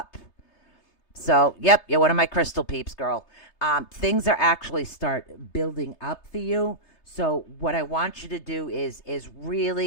So, yep, you're one of my crystal peeps, girl. Things are actually start building up for you. So what I want you to do is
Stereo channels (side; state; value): right; late; 3.3 ms